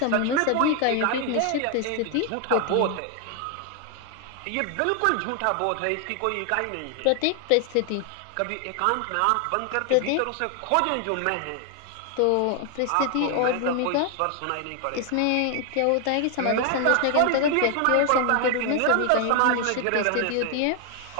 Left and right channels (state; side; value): different; both; correlation 0.00